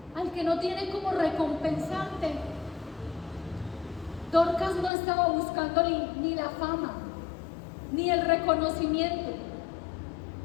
al que no tiene cómo recompensarte. Dorcas no estaba buscando ni la fama, ni el reconocimiento.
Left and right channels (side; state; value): right; drops out; at 4.9 s